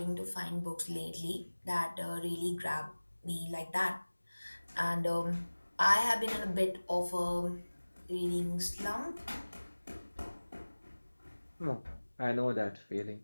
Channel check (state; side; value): inverted; both; correlation -1.00